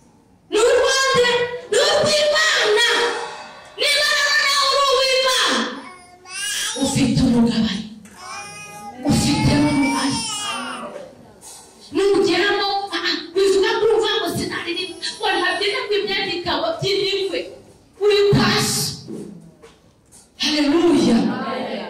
n'urwande, n'urw'Imana. Niba nawe uri uw'Imana ufite umugabane, ufite n'uruhare. Nugeramo bivuga ko urumva ngo sinaririmba ngo ntabyina ngo imyenda ikaba by'imikwe, uri kwasi. Haleluya,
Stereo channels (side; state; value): both; identical; correlation 1.00